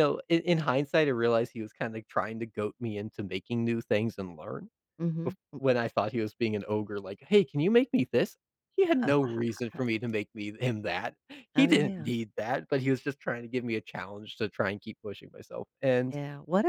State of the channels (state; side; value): identical; both; correlation 1.00